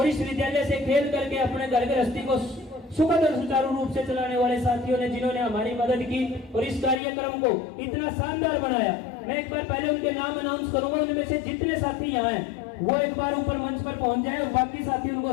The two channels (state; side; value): drops out; right; at 7.0 s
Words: इस विद्यालय से खेल करके अपने घर गृहस्थी को सुखद और सुचारू रूप से चलाने वाले साथियों ने, जिन्होंने हमारी मदद की और इस कार्यक्रम को इतना शानदार बनाया। मैं एक बार पहले उनके नाम अनाउंस करूंगा। उनमें से जितने साथी यहाँ हैं वो एक बार ऊपर मंच पर पहुंच जाए और बाकी साथी